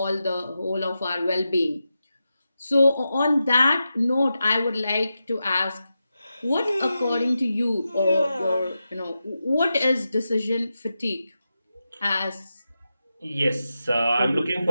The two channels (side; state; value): both; inverted; correlation -0.90